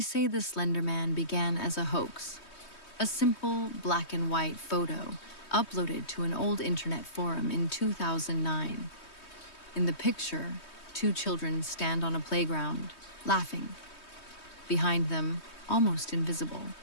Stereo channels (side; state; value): right; late; 3.2 ms